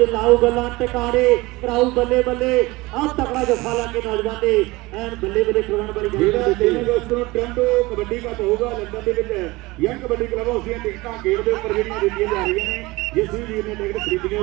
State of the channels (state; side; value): quieter; left; 21.6 dB